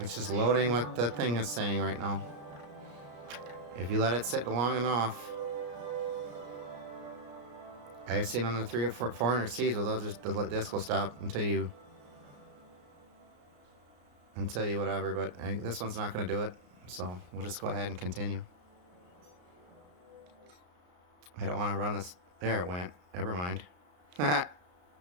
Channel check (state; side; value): late; left; 33 ms